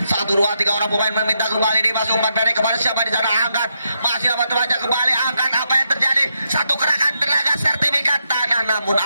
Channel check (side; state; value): both; inverted; correlation -0.81